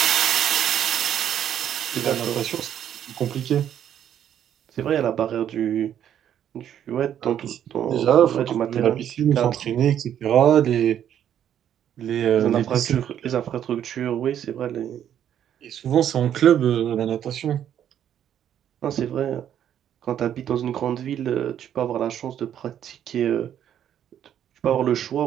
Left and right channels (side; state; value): left; quieter; 10.0 dB